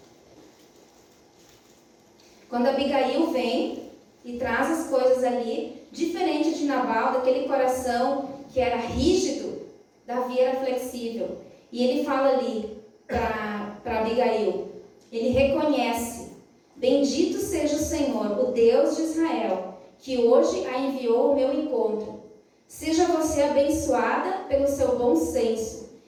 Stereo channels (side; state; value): both; identical; correlation 1.00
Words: quando Abigail vem e traz as coisas ali, diferente de Nabal, daquele coração que era rígido, Davi era flexível. E ele fala ali para Abigail, ele reconhece: bendito seja o Senhor, o Deus de Israel, que hoje a enviou ao meu encontro. Seja você abençoada pelo seu bom senso